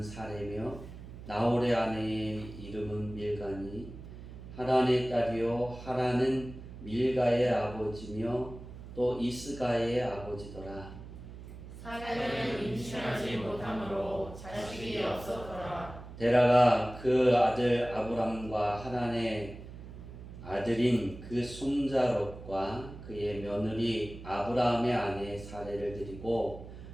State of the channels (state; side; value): noise; right; hum, 13 dB below the sound